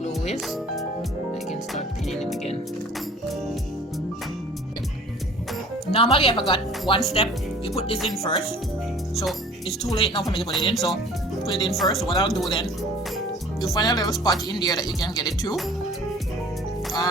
is, I can start pinning it again. Normally I forgot one step. You put this in first. So it's too late now for me to put it in. So put it in first. So what I'll do then, you find a little spot in there that you can get it to.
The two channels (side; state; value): both; normal; correlation 0.48